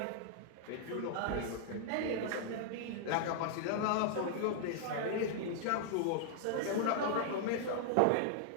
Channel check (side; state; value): both; different; correlation -0.01